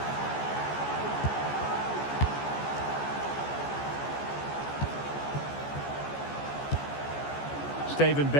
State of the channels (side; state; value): right; late; 14 ms